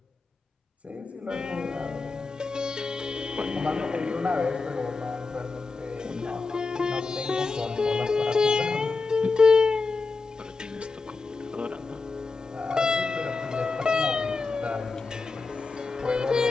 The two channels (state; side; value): quieter; right; 4.0 dB